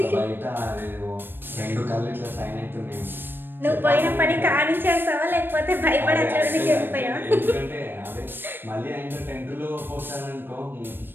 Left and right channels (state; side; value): late; left; 0.097 ms